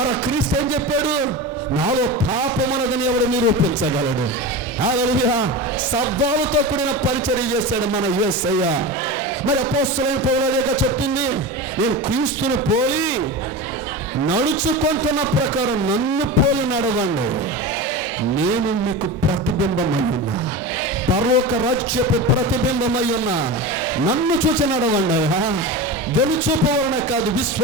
క్రీస్తు ఏం చెప్పాడు? నాలో పాపమున్నదని ఎవడు నిరూపించగలడు? హల్లెలూయా. శబ్దాలతో కూడిన పరిచర్య చేశాడు మన యేసయ్య. మరి అపోస్తలుడైన పౌలు చెప్పింది, నేను క్రీస్తుని పోలి నడుచుకుంటున్న ప్రకారం నన్ను పోలి నడవండి, నేను మీకు ప్రతిబింబమై ఉన్నా, పరలోక రాజ్యపు ప్రతిబింబమై ఉన్నా, నన్ను చూసి నడవండి. వెలుచూపు వలన కాదు,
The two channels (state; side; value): normal; both; correlation 0.25